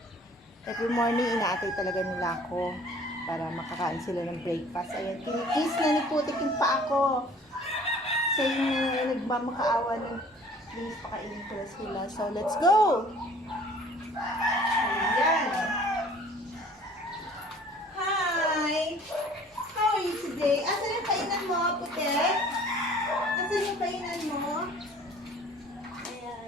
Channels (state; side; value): normal; both; correlation 0.51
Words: Every morning, inaatay talaga nila ako para makakain sila ng breakfast. Ayan, kinikis na ni Putik yung pa ako. Sa inyo, nagmamakaawa ng please, pakainin ko na sila. So, let's go! Ayan. Hi! How are you today? Asan yung kainan mo, Putik? Asan yung kainan mo?